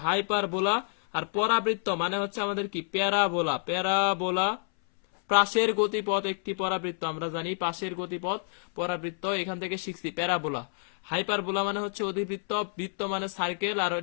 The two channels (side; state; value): right; silent; 59 dB below the other